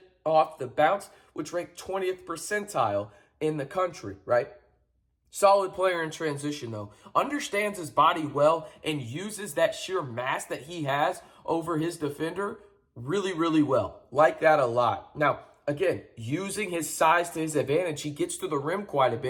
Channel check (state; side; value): identical; both; correlation 1.00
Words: off the bounce, which ranked 20th percentile in the country, right? Solid player in transition, though. Understands his body well and uses that sheer mass that he has over his defender really, really well. Like that a lot. Now, again, using his size to his advantage, he gets to the rim quite a